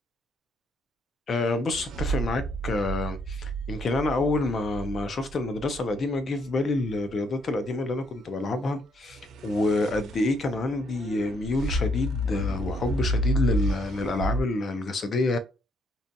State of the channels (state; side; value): normal; both; correlation 0.71